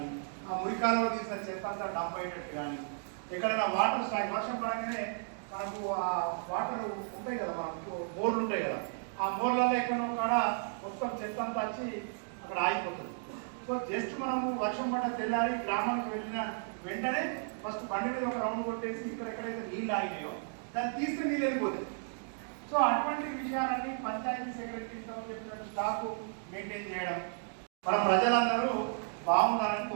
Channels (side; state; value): left; silent; digital silence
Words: ఆ మురి కాలువలు తీసిన చెత్త అంతా డంప్ అయ్యేటట్టు కానీ, ఎక్కడైనా వాటర్ స్టాక్ వర్షం పడగానే మనకు ఆ వాటర్ ఉంటాయి కదా, మనకు బోర్లు ఉంటాయి కదా, ఆ బోర్లలో ఎక్కడో కాడ మొత్తం చెత్త అంతా వచ్చి అక్కడ ఆగిపోతుంది. సో జస్ట్ మనము వర్షం పడ్డ తెల్లారి గ్రామానికి వెళ్ళిన వెంటనే ఫస్ట్ బండి మీద ఒక రౌండ్ కొట్టేసి ఇక్కడ ఎక్కడైతే నీళ్ళు ఆగినాయో దాన్ని తీస్తే నీళ్ళు వెళ్ళిపోతాయి. సో అటువంటి విషయాలన్నీ పంచాయతీ సెక్రటరీతో చెప్పినట్టు స్టాక్ మెయింటైన్ చేయడం, మన ప్రజలందరూ బాగుండాలని